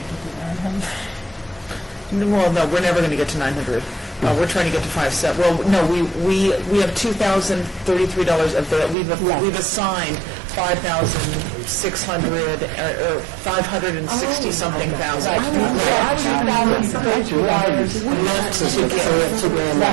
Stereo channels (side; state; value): left; drops out; at 9.0 s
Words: Well, no, we're never going to get to 900. We're trying to get to 5,700. Well, no, we have $2,033 of that. We've assigned 5,600 or 560 something thousand. $2,000